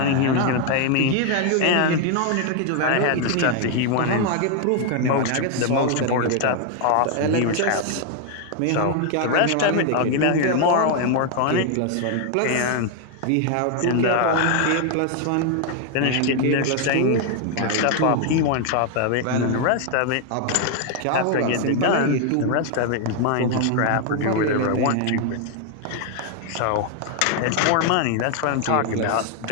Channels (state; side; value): different; both; correlation 0.00